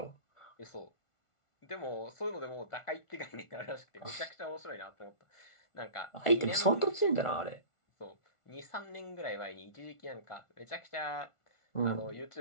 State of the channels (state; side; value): late; right; 1.4 ms